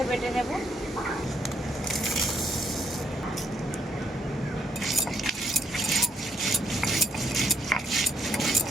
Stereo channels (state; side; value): normal; both; correlation 0.73